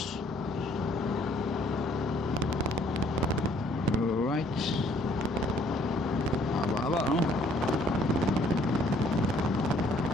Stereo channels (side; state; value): both; normal; correlation 0.62